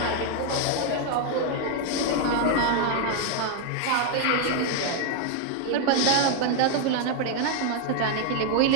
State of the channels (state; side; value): different; both; correlation 0.00